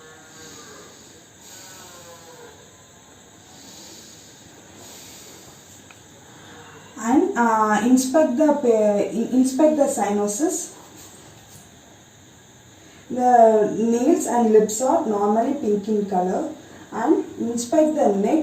And inspect the sinuses. The nails and lips are normally pink in color. And inspect the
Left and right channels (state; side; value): identical; both; correlation 1.00